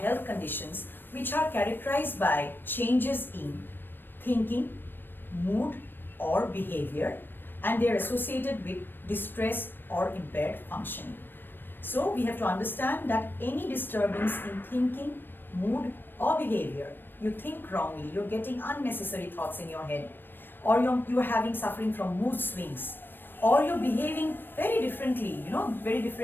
conditions which are characterized by changes in thinking, mood or behavior, and they are associated with distress or impaired functioning. So we have to understand that any disturbance in thinking, mood or behavior, you think wrongly, you're getting unnecessary thoughts in your head, or you're having suffering from mood swings, or you're behaving very differently. Very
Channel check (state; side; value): late; right; 0.095 ms